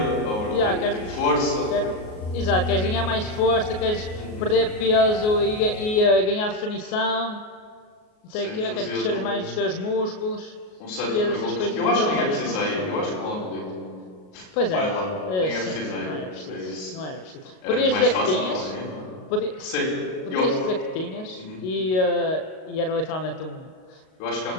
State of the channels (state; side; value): late; right; 38 ms